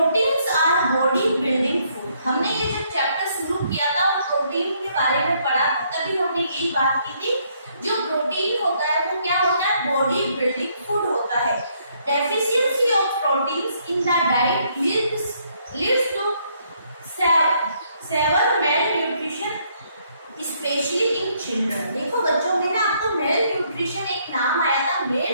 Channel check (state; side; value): inverted; both; correlation -0.70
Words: our body building food. हमने ये जो चैप्टर शुरू किया था वो प्रोटीन के बारे में पढ़ा, तभी हमने यही बात की थी, जो प्रोटीन होता है वो क्या होता है, बॉडी बिल्डिंग फूड होता है। Deficiency of proteins in the diet leads to severe malnutrition specially in children. देखो बच्चों, मैंने आपको मेल न्यूट्रिशन एक नाम आया था, मेल